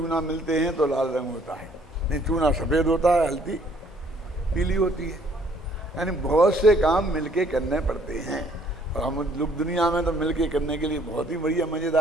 मिलते हैं तो लाल रंग होता है, नहीं चूना सफ़ेद होता है, हल्दी पीली होती है। यानी बहुत से काम मिलके करने पड़ते हैं। और हम लोग दुनिया में तो मिलके करने के लिए बहुत ही बढ़िया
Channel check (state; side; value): normal; both; correlation 0.62